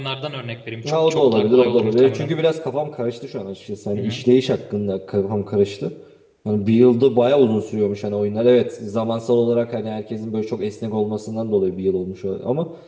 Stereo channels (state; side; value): identical; both; correlation 1.00